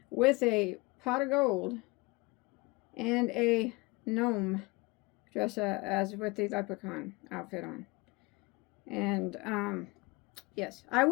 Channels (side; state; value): right; quieter; 25.2 dB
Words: with a pot of gold and a gnome dressed as with the leprechaun outfit on. And yes, I